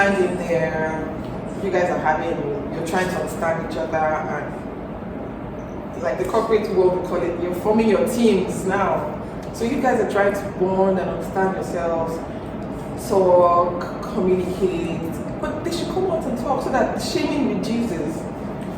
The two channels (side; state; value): both; identical; correlation 1.00